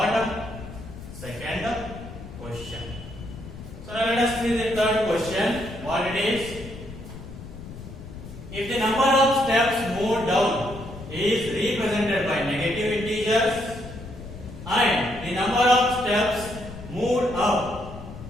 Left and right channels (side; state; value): left; noise; rumble, 13 dB below the sound